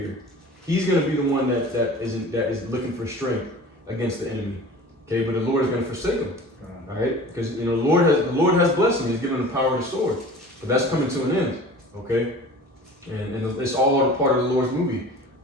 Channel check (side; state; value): both; normal; correlation 0.41